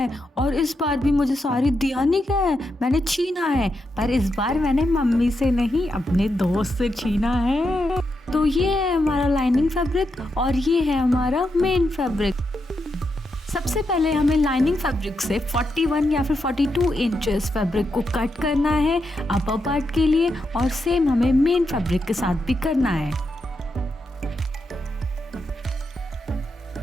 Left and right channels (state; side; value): normal; both; correlation 0.84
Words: और इस बार भी मुझे साड़ी दिया नहीं गया है, मैंने छीना है। पर इस बार मैंने मम्मी से नहीं, अपने दोस्त से छीना है। तो ये है हमारा लाइनिंग फैब्रिक और ये है हमारा मेन फैब्रिक। सबसे पहले हमें लाइनिंग फैब्रिक से 41 या फिर 42 इंचेस फैब्रिक को कट करना है अपर पार्ट के लिए, और सेम हमें मेन फैब्रिक के साथ भी करना है।